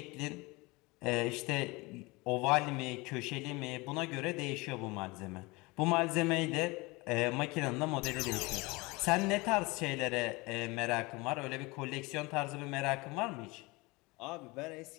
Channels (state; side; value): quieter; right; 24.2 dB